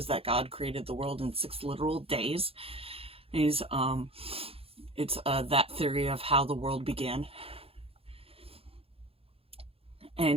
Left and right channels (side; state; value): left; late; 0.28 ms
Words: that God created the world in 6 literal days. It's that theory of how the world began.